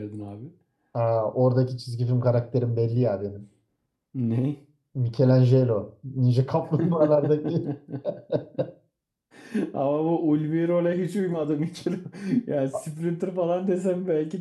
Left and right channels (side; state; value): both; identical; correlation 1.00